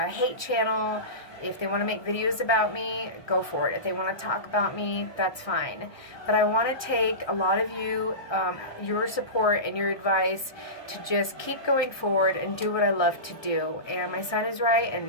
channel. If they want to make videos about me, go for it. If they want to talk about me, that's fine. But I want to take a lot of you, your support and your advice to just keep going forward and do what I love to do. And my son is right,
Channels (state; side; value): late; right; 1.3 ms